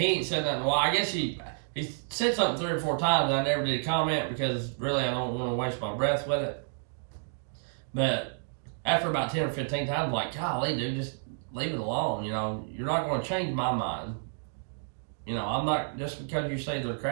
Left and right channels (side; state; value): left; silent; digital silence